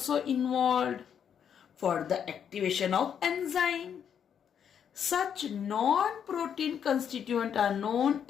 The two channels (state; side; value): quieter; right; 8.2 dB